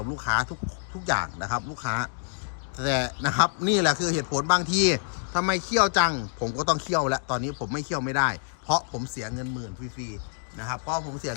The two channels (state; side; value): silent; right; digital silence